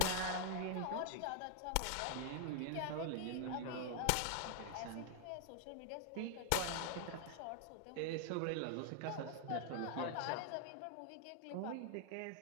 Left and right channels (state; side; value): different; both; correlation 0.00